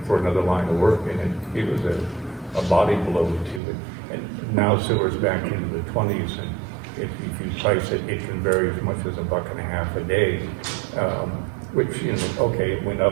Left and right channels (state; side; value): drops out; left; at 3.6 s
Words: for another line of work, and it was a body blow to it. And now silver's back into the 20s, and if you price it, it can vary as much as $1.50 a day, which, you know, okay, it went